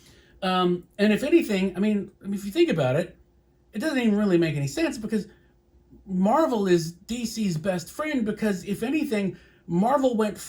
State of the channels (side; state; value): both; identical; correlation 1.00